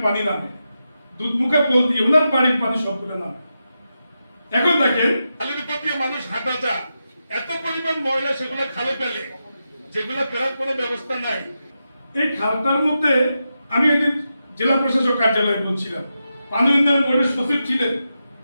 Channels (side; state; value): both; inverted; correlation -0.88